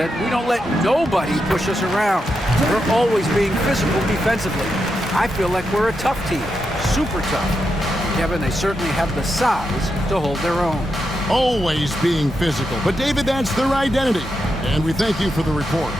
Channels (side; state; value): both; normal; correlation 0.85